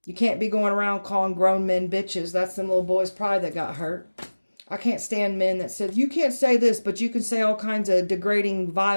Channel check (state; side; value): inverted; both; correlation -1.00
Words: You can't be going around calling grown men bitches. That's them little boys' pride that got hurt. I can't stand men that said, you can't say this, but you can say all kinds of degrading,